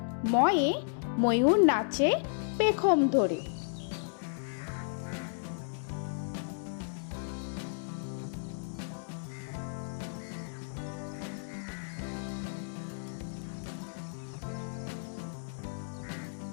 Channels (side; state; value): right; silent; digital silence